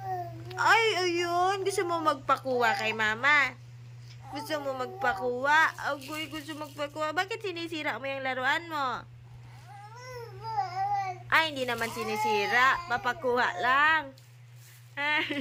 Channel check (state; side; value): identical; both; correlation 1.00